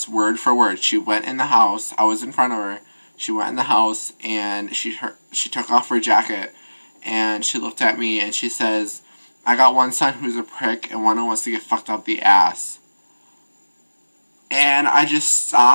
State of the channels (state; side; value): inverted; both; correlation -1.00